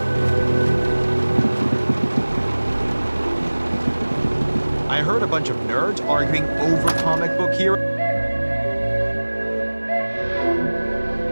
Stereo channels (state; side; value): inverted; both; correlation -1.00